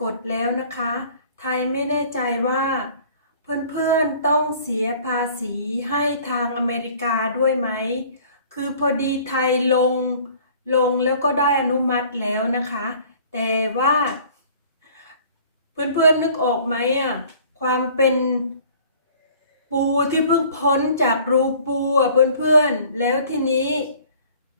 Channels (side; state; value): both; inverted; correlation -0.52